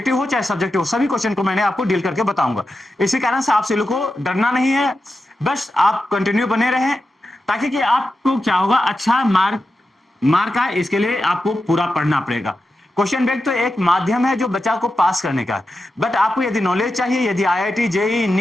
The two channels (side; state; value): both; normal; correlation 0.90